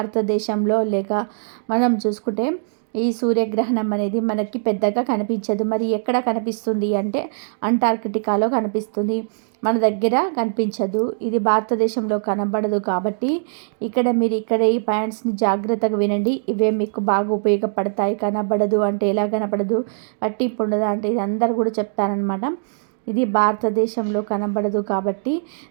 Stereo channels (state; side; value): silent; left; digital silence